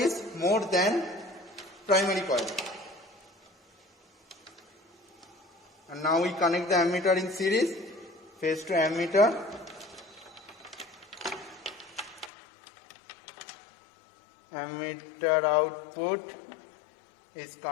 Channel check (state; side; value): drops out; right; at 12.3 s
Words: more than primary coil. And now we connect the ammeter in series, phase to ammeter. Ammeter output is